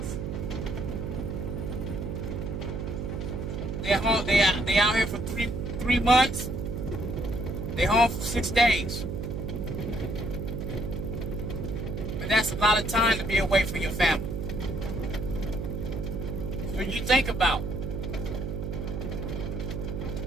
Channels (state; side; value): noise; right; hum, 4 dB below the sound